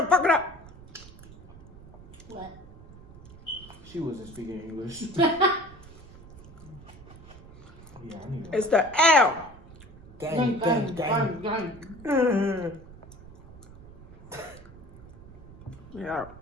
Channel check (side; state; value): right; noise; rumble, 19 dB below the sound